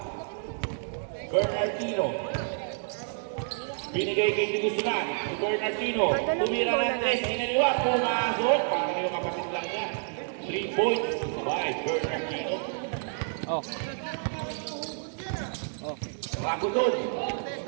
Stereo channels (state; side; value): silent; left; digital silence